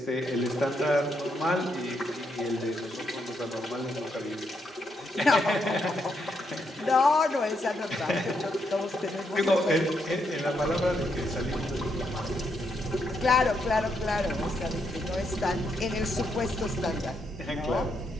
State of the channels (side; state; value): both; normal; correlation 0.78